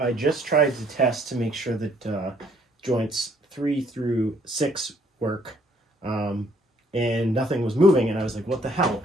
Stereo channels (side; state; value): both; normal; correlation 0.64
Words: just tried to test to make sure that joints 3 through 6 work, and nothing was moving, and I was like, what the hell?